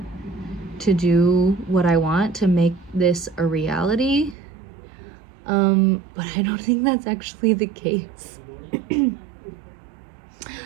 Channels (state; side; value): drops out; left; at 4.4 s